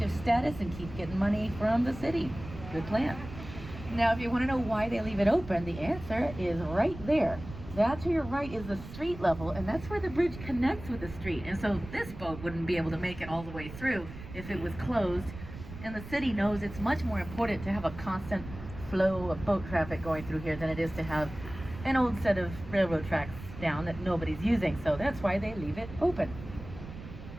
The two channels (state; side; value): noise; right; rumble, 13 dB below the sound